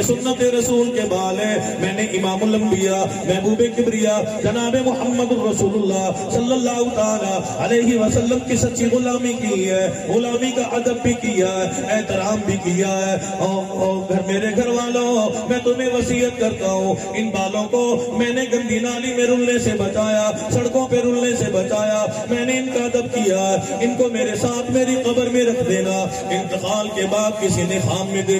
سنت رسول کے بال ہے، میں نے امام الانبیاء محبوب کبریا جناب محمد رسول اللہ صلی اللہ تعالی علیہ وسلم کی سچی غلامی کی ہے، غلامی کا ادب بھی کیا ہے، احترام بھی کیا ہے۔ اور میرے گھر والوں، میں تمہیں وصیت کرتا ہوں، ان بالوں کو میں نے گندی نالی میں رلنے سے بچایا، سڑکوں پہ رلنے سے بچایا، میں نے ان کا ادب کیا ہے، ان کو میرے ساتھ میری قبر میں رکھ دینا۔ انتقال کے بعد کسی نے خواب میں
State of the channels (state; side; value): identical; both; correlation 1.00